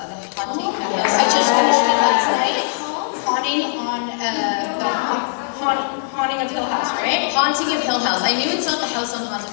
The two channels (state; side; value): silent; right; digital silence